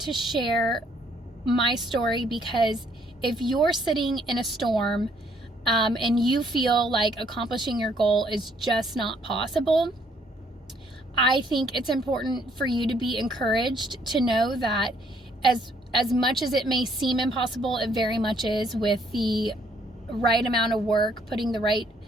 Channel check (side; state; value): both; normal; correlation 0.66